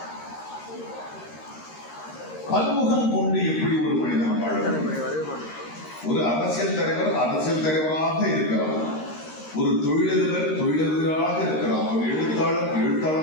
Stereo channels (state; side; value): late; right; 13 ms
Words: பன்முகம் கொண்டு எப்படி ஒரு மனிதன் வாழ முடியும்? ஒரு அரசியல் தலைவர் அரசியல் தலைவராக இருக்கலாம், ஒரு தொழிலதிபர் தொழிலதிபராக இருக்கலாம், ஒரு எழுத்தாளர்